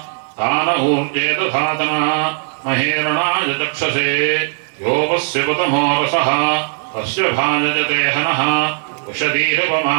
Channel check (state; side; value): silent; left; 63 dB below the other